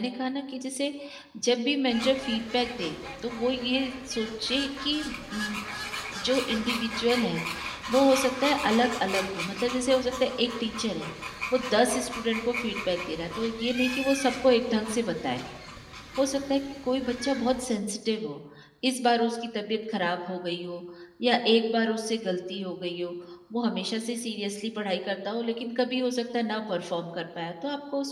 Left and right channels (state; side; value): identical; both; correlation 1.00